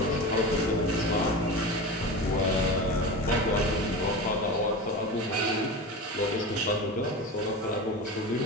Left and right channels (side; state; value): both; normal; correlation 0.27